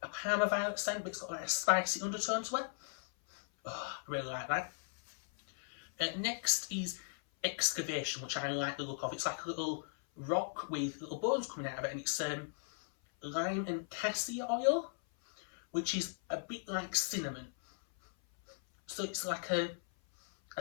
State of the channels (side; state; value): right; silent; 53 dB below the other